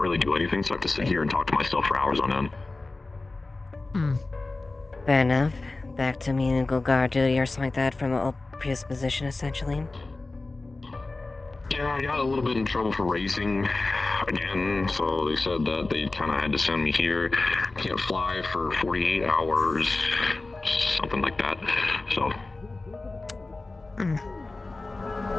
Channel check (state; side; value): quieter; right; 3.3 dB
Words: do anything, so I have to sit here and talk to myself for hours on end. Fair enough. back to menial guard duty or something like that from a previous position, essentially. Yeah, I got a little bit in trouble for racing again, so they said that they kind of had to send me here. Can't fly for 48 hours, something like that. So.